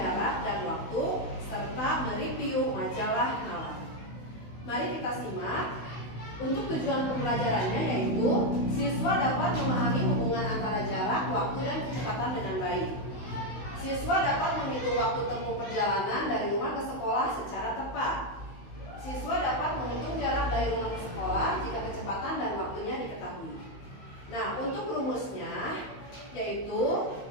dan waktu serta mereview majalah Nalar. Mari kita simak. Untuk tujuan pembelajarannya yaitu siswa dapat memahami hubungan antara jarak, waktu, dan kecepatan dengan baik. Siswa dapat menghitung waktu tempuh perjalanan dari rumah ke sekolah secara tepat. Siswa dapat menghitung jarak dari rumah ke sekolah jika kecepatan dan waktunya diketahui. Nah, untuk rumusnya yaitu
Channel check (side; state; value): right; late; 16 ms